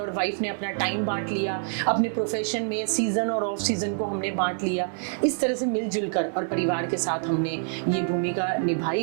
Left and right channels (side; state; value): left; silent; 61 dB below the other